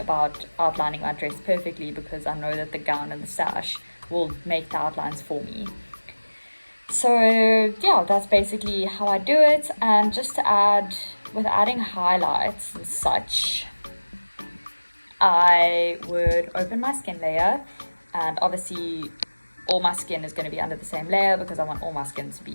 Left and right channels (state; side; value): inverted; both; correlation -1.00